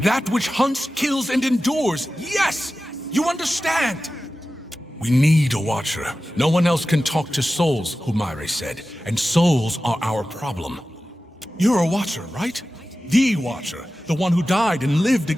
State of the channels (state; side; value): normal; both; correlation 0.94